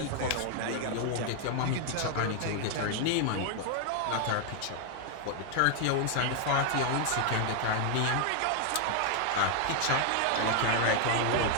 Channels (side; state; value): both; different; correlation 0.00